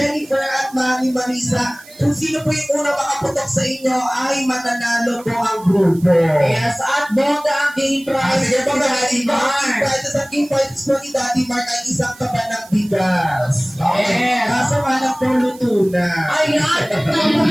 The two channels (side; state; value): right; noise; hiss, 22 dB below the sound